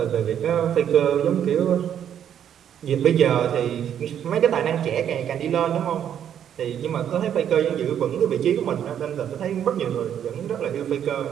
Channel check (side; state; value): left; quieter; 9.4 dB